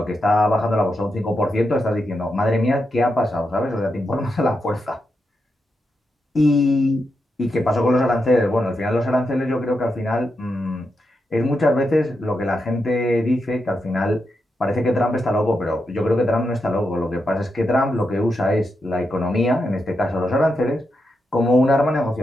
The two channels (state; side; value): normal; both; correlation 0.85